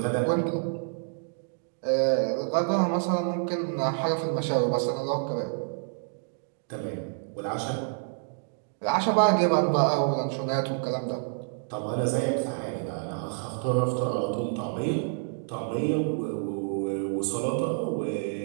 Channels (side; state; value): left; silent; digital silence